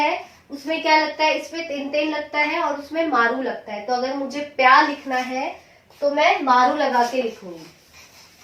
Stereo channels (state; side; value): identical; both; correlation 1.00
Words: उसमें क्या लगता है, इसमें तेन तेन लगता है और उसमें मारू लगता है। तो अगर मुझे प्या लिखना है तो मैं मारू लगा के लिखूंगी।